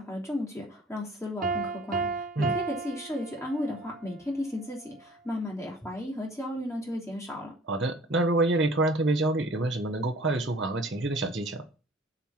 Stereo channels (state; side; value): normal; both; correlation 0.51